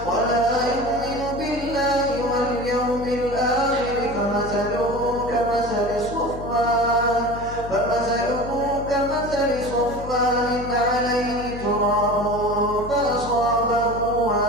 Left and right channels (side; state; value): left; noise; hum, 11 dB below the sound